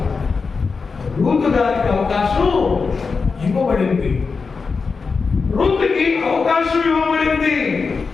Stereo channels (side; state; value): right; quieter; 4.8 dB